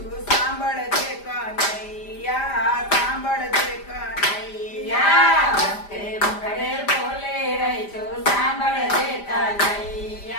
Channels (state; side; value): late; right; 5.0 ms